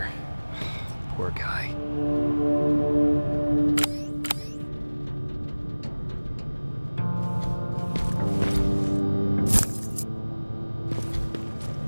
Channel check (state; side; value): inverted; both; correlation -1.00